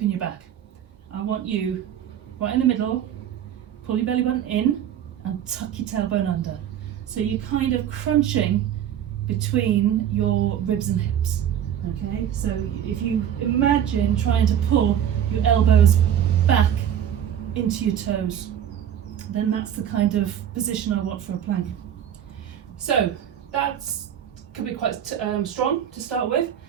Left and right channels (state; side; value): quieter; left; 9.8 dB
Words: in your back. I want you right in the middle, pull your belly button in and tuck your tailbone under. So you're kind of crunching between your ribs and hips. Okay, so if you imagine trying to pull your elbows back into your toes, then that's the kind of position I want for a plank. So that's can be quite strong to start with.